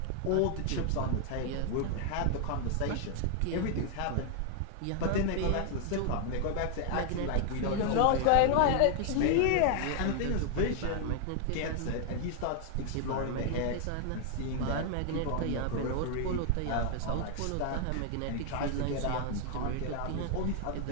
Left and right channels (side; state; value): both; different; correlation 0.00